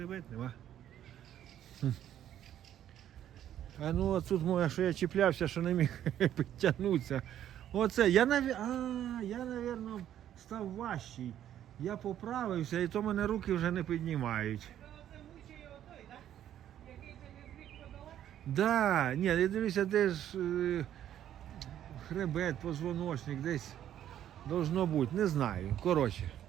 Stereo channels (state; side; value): quieter; left; 11.0 dB